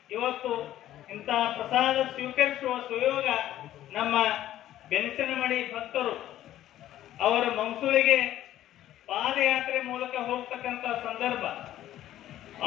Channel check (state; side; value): quieter; right; 13.0 dB